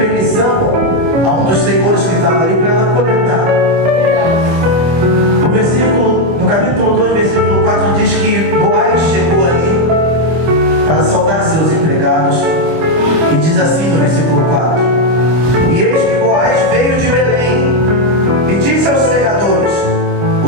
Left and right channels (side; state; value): left; late; 25 ms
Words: a um dos senhores que estava ali para ela coletar. No capítulo 2, versículo 4, diz que Boaz chegou ali para saudar seus empregados, e diz assim no versículo 4: e eis que Boaz veio de Belém e disse aos segadores: o